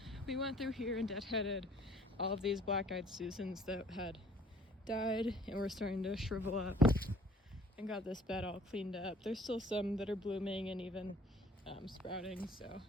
We went through here and deadheaded all of these black-eyed Susans that had died and were starting to shrivel up, and got this bed all cleaned up. There's still some that are blooming and even sprouting, so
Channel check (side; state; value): both; normal; correlation 0.56